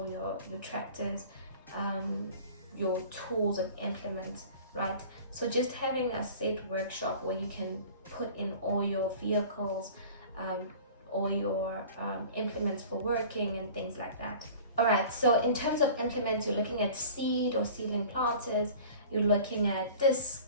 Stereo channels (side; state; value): both; inverted; correlation -0.43